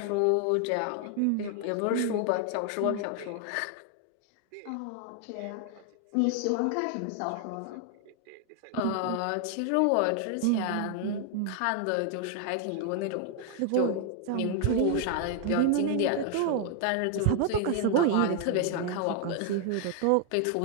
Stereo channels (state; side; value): different; both; correlation 0.00